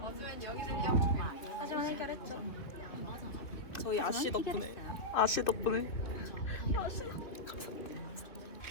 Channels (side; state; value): right; late; 2.5 ms